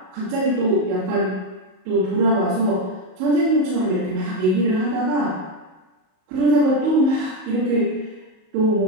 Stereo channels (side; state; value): left; late; 38 ms